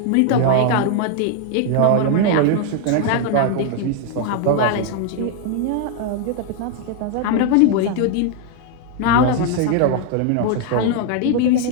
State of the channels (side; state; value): both; different; correlation 0.00